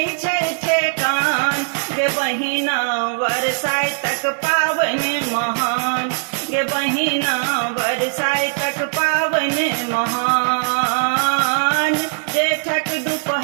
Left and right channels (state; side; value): silent; left; digital silence